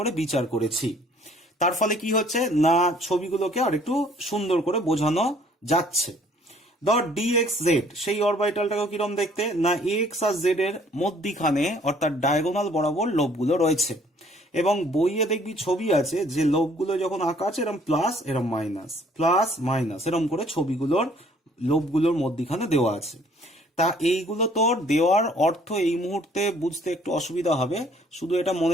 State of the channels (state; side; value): normal; both; correlation 0.59